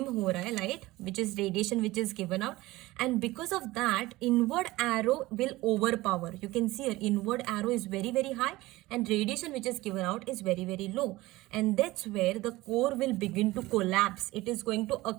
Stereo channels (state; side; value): quieter; left; 19.0 dB